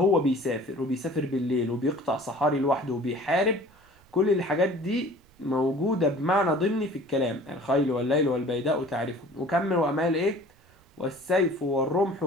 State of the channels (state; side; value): noise; right; rumble, 30 dB below the sound